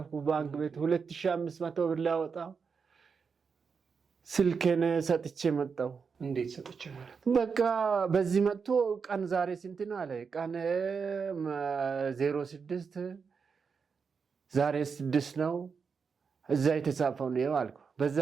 ባንክ ቤት 2500 ብር ላወጣ ስልኬን ሰጥቼ መጣሁ። እንዴት ሰጥቼ ማለት? በቃ በዚህ መጥቶ ቀን ዛሬ ስንት ነው አለ። ቀን 06 ዛሬ 6 ነው እዛ የተጻፈው ነው አልኩ። በዛ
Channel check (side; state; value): left; quieter; 5.6 dB